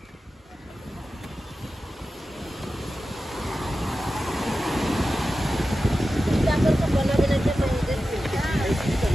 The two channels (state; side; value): normal; both; correlation 0.93